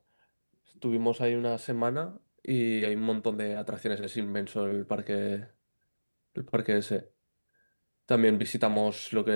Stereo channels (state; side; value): inverted; both; correlation -1.00